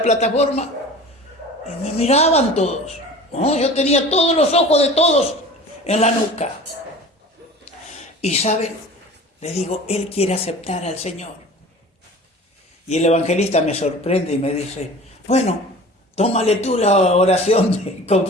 Y me miraban todos, ¿no? Yo tenía todos los ojos de todos en la nuca. Y ¿saben? Le digo: él quiere aceptar al Señor. Y el evangelista me sorprende y me dice: bueno, tómale tú la oración de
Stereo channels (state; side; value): normal; both; correlation 0.40